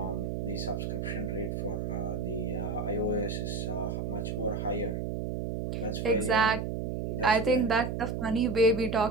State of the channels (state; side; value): noise; right; hum, 2 dB below the sound